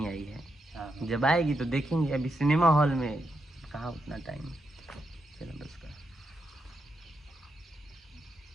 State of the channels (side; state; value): both; normal; correlation 0.83